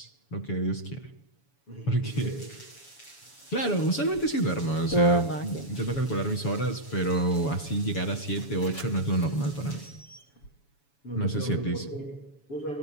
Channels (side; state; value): right; late; 7.1 ms